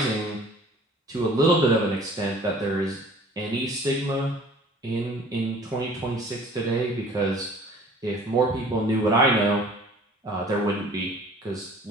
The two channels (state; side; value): normal; both; correlation 0.50